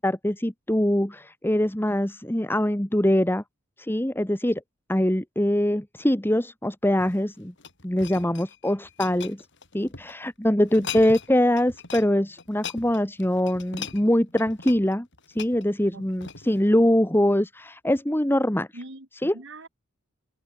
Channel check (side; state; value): both; normal; correlation 0.92